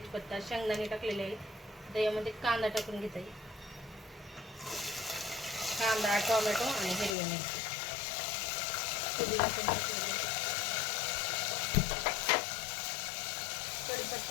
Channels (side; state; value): right; drops out; at 7.2 s